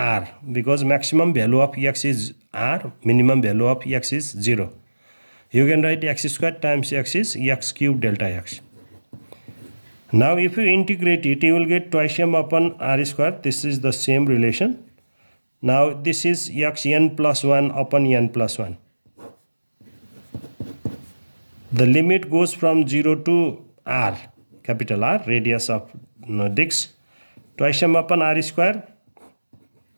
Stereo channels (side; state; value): both; inverted; correlation -1.00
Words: because maximum value of x is r, minimum value of x is 0. You can write x square times x is x cube delta x. Now if you integrate it, you will get twice m upon r square. This is the same relation. Now this is x n plus 1 upon n plus 1. The limit goes from 0 to r, capital R, radius of disc. Twice m upon r square,